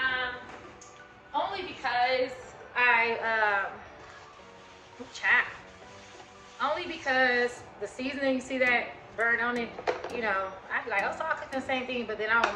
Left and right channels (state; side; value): identical; both; correlation 1.00